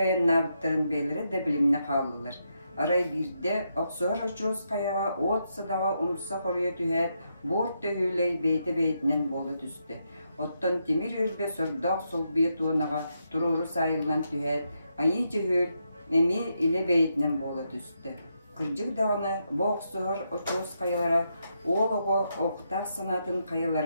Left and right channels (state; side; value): inverted; both; correlation -0.81